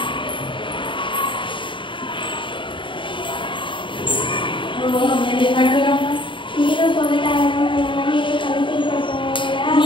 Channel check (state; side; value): late; right; 0.24 ms